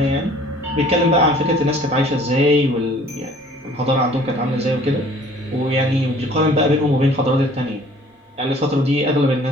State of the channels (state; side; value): normal; both; correlation 0.53